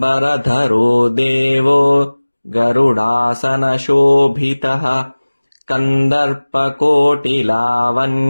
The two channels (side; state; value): both; inverted; correlation -1.00